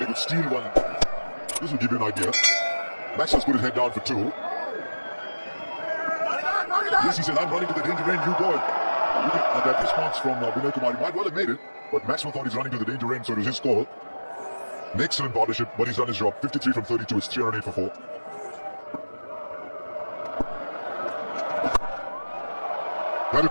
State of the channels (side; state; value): both; inverted; correlation -1.00